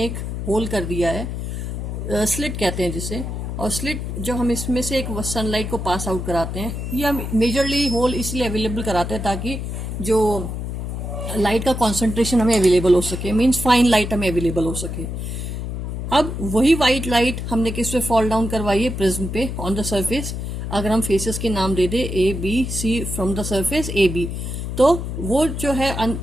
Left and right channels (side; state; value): left; noise; hum, 5 dB below the sound